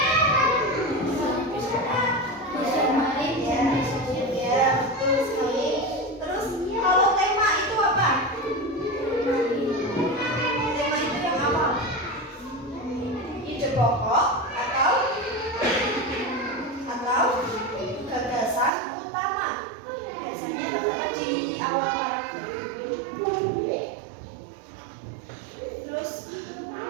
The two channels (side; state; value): left; drops out; at 18.7 s